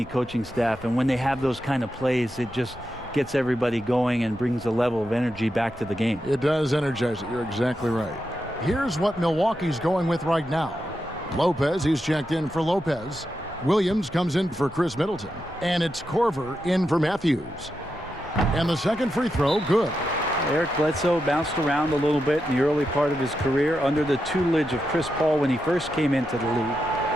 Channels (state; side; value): normal; both; correlation 0.87